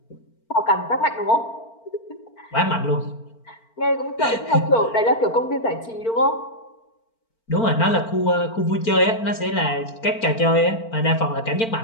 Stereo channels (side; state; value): right; late; 4.4 ms